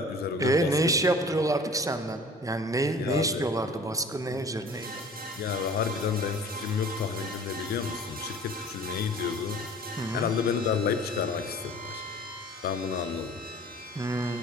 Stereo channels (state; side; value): normal; both; correlation 0.46